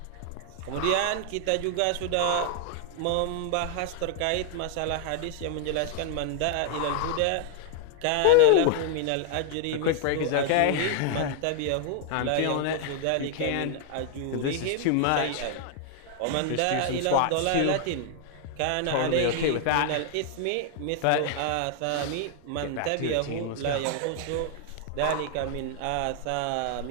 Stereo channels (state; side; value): different; both; correlation 0.00